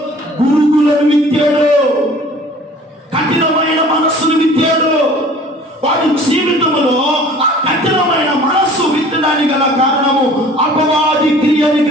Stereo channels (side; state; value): both; normal; correlation 0.49